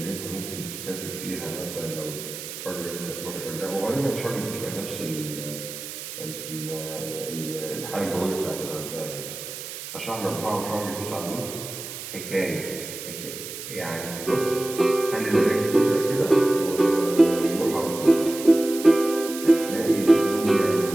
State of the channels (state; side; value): noise; right; hiss, 10 dB below the sound